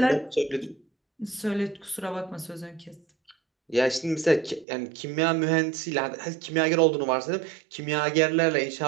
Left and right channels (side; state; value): left; drops out; at 4.7 s